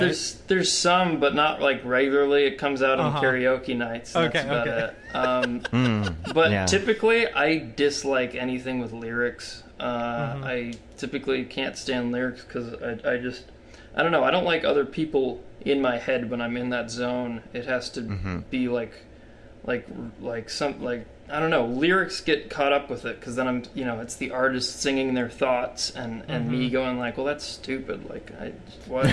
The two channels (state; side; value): identical; both; correlation 1.00